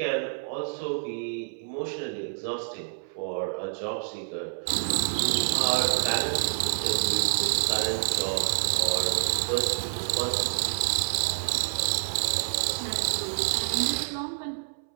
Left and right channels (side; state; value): left; silent; 60 dB below the other